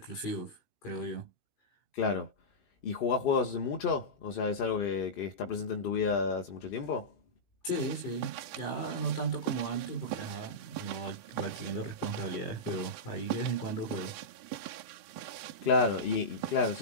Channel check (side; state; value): right; late; 2.6 ms